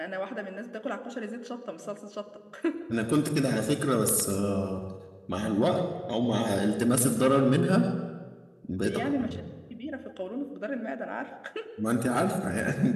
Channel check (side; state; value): both; identical; correlation 1.00